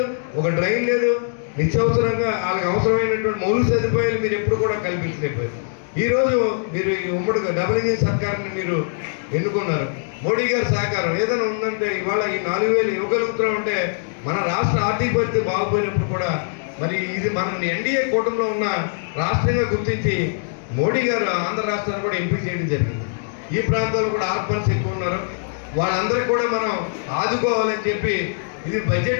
ఒక డ్రైన్ లేదు, నిత్యావసరంగా వాళ్ళకి అవసరమైనటువంటి మౌలిక సదుపాయాలు మీరు ఎప్పుడు కూడా కల్పించలేకపోయారు. ఈరోజు మీరు ఈ ఉమ్మడి డబుల్ ఇంజిన్ సర్కార్ని మీరు ఎన్నుకున్నారు. మోడీ గారి సహకారం ఏదైనా ఉందంటే ఇవాళ ఈ 4,000 ఇవ్వగలుగుతూ ఉంటే మన రాష్ట్ర ఆర్థిక పరిస్థితి బాగుపోయినప్పుడు కూడా మరి ఇది మన ఎన్డీఏ కూటమిలో ఉన్న రాష్ట్రంగా గుర్తించి మోడీ గారు ఆంధ్ర రాష్ట్రాన్ని కూడా ఎంపిక చేయడం జరిగింది. ఈ ప్రాంతాల్లో కూడా ఆర్ఫన్స్ ఎక్కువ ఉన్నారు, వాళ్ళందరికీ కూడా మనం ఆదుకోవాలని చెప్పి ఇది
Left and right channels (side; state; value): right; silent; digital silence